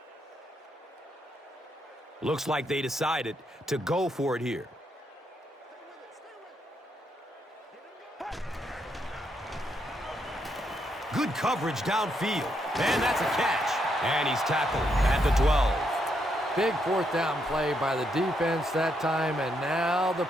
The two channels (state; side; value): normal; both; correlation 0.78